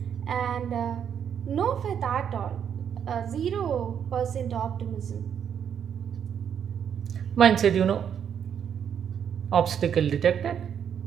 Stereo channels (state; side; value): quieter; left; 8.3 dB